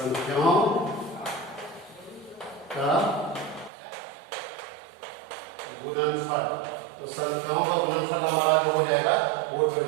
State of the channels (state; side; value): drops out; left; at 3.7 s